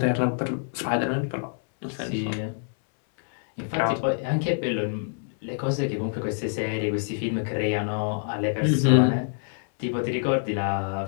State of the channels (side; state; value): right; silent; 61 dB below the other